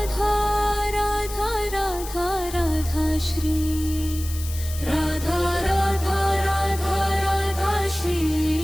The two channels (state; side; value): noise; left; hiss, 12 dB below the sound